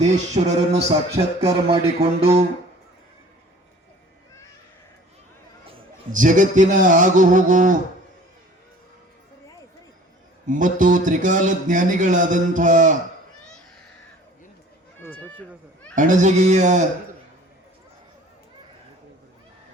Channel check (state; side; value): normal; both; correlation 0.48